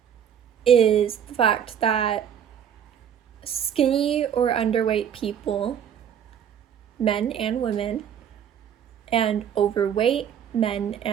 is the fact that skinny or underweight people, men and women, and overweight men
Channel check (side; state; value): left; quieter; 8.8 dB